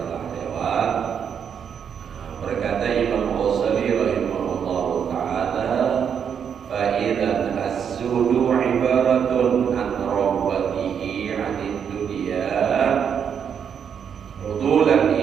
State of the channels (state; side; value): quieter; left; 7.7 dB